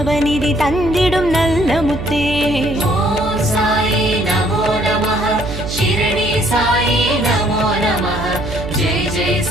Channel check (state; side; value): noise; right; hum, 8 dB below the sound